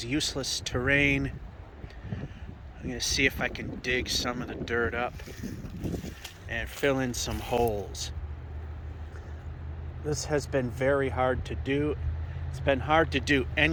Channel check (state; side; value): identical; both; correlation 1.00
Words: useless terrain. I'm going to see if I can dig some of the dirt up and fill in some holes. This has been very hard to do. It's been hard to do